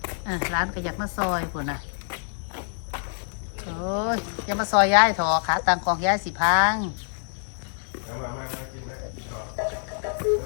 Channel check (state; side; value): silent; right; digital silence